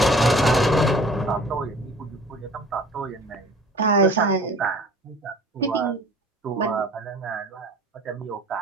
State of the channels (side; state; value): both; normal; correlation 0.47